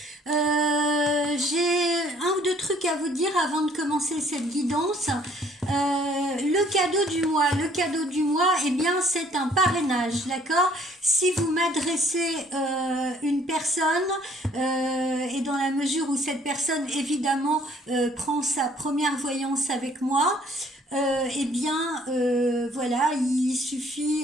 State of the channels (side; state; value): both; normal; correlation 0.60